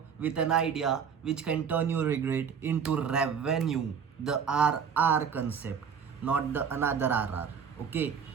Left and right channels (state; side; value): quieter; left; 6.9 dB